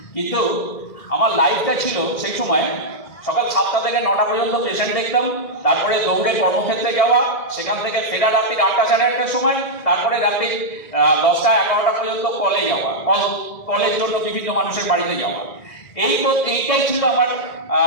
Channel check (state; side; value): late; right; 1.8 ms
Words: কিন্তু আমার লাইফটা ছিল সেই সময় সকাল 7টা থেকে 9টা পর্যন্ত পেশেন্ট দেখতাম, তারপরে দৌড়ে কর্মক্ষেত্রে যাওয়া, সেখান থেকে ফেরা রাত্রি 8টা সাড়ে 8টার সময়, তারপরে রাত্রি 10টা 11টা পর্যন্ত কলে যাওয়া, কলের জন্য বিভিন্ন মানুষের বাড়িতে যাওয়া। এইটাই ছিল আমার